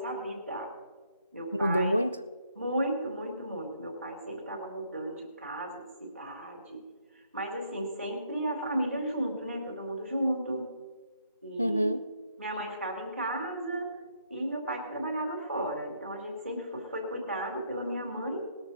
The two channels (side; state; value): both; inverted; correlation -0.71